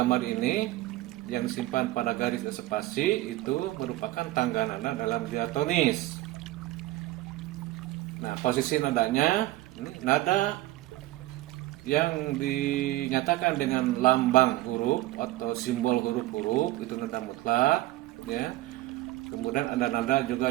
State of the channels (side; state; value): left; quieter; 17.2 dB